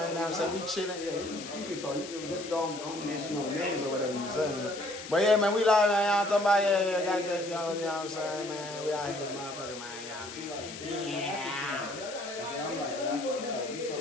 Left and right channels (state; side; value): noise; left; hiss, 12 dB below the sound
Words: You know what I'm saying? We chilling. Yeah, you can talk. You can just don't mention no names or whatever you saying. But yeah, man, we live, man. Y'all talking about, yeah, gotta get, you know what I'm saying, man? We out here, this motherfucker, man. You know what I mean? Yeah.